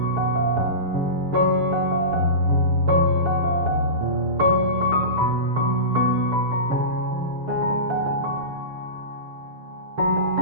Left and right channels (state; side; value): late; left; 6.8 ms